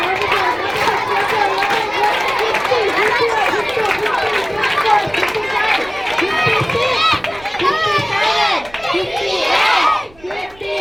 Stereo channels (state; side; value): noise; right; rumble, 25 dB below the sound